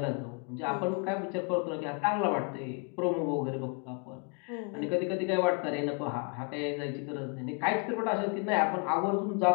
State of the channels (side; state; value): right; quieter; 35.8 dB